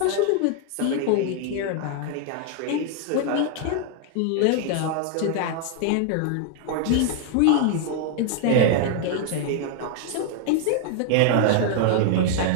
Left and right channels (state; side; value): different; both; correlation 0.00